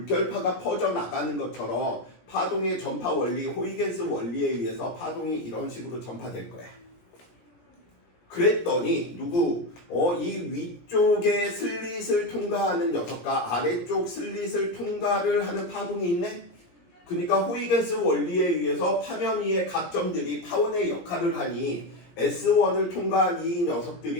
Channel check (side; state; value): right; late; 17 ms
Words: 퍼져나가는 것처럼 파동의 전파 원리, 호이겐스 원리에 의해서 파동이 이런 식으로 전파될 거야. 그랬더니 이 위쪽에 슬릿을 통과하는 녀석과 아래쪽 슬릿을 통과를 하는 파동이 있네? 그러니까 호이겐스 원리에 의해서 파면 위의 각 점들이 파원의 역할을 하니 S1을 통과한 이